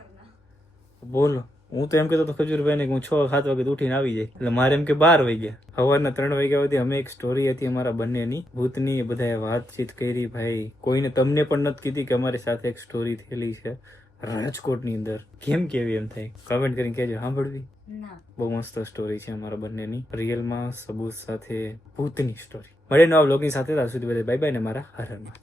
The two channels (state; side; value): normal; both; correlation 0.83